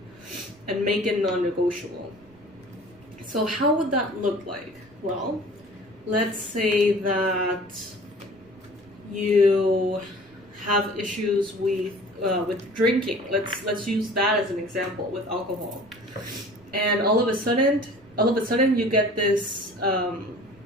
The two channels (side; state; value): right; noise; rumble, 28 dB below the sound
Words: and make it non-negotiable. So how would that look like? Well, let's say that you have issues with drinking. Let's use that as an example with alcohol. And all of a sudden you get this